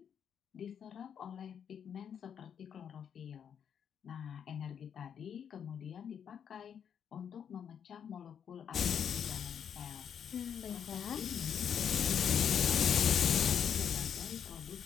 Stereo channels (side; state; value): right; quieter; 8.1 dB